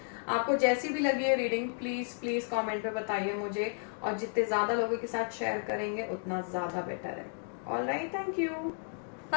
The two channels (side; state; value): right; silent; 56 dB below the other